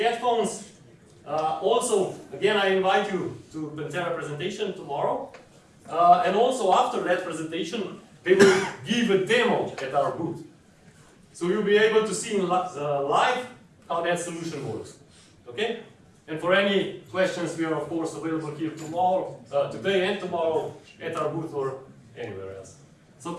Also, again, I invite you to Pantera presentation tomorrow. And also after that presentation, they will give a demo at our booth. So you'll be able to see in live how that solution works. Okay? And for any questions, we are of course available here tomorrow, today and tomorrow at our booth or anywhere else. So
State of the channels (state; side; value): identical; both; correlation 1.00